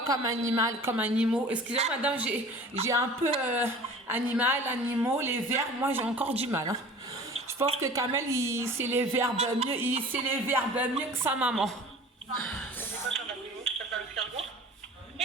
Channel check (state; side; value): normal; both; correlation 0.43